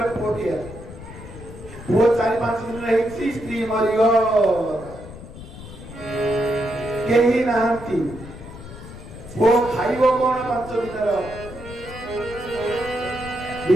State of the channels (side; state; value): left; noise; rumble, 14 dB below the sound